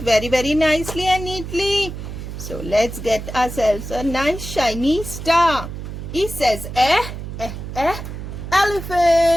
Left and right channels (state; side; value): noise; right; hum, 9 dB below the sound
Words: very nicely and neatly. So let's get ourselves a nice shiny star. E says eh, eh, eh,